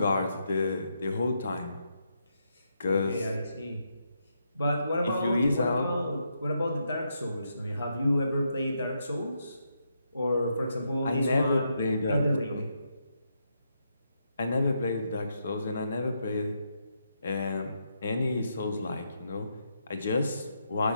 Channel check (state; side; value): inverted; both; correlation -0.81